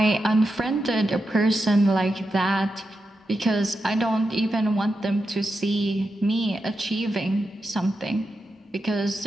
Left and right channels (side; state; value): both; normal; correlation 0.88